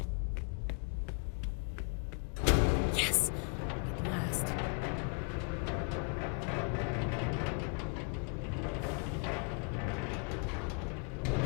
Yes! At last.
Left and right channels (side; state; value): right; quieter; 38.1 dB